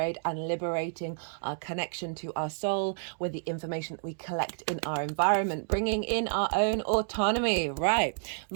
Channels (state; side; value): silent; left; digital silence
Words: and liberating our connection to our soul with the information that we collect in our environment, bringing in our own autonomy. Right.